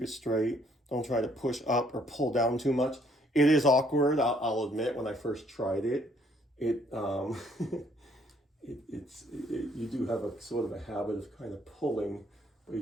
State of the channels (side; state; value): both; normal; correlation 0.65